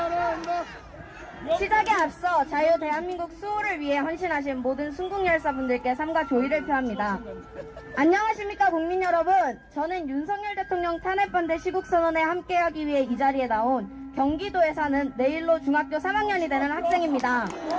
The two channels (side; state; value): both; identical; correlation 1.00